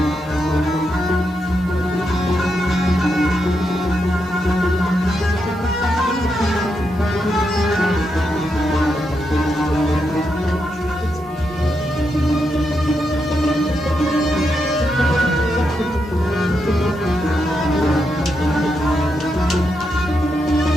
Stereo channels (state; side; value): normal; both; correlation 0.83